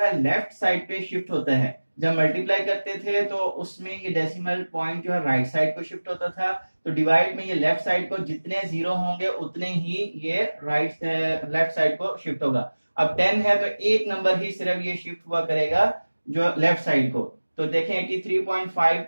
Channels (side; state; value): both; inverted; correlation -1.00